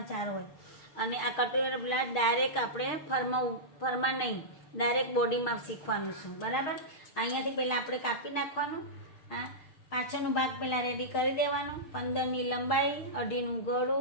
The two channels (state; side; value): late; right; 6.5 ms